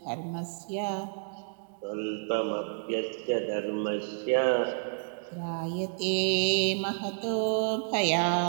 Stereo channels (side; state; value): left; silent; 58 dB below the other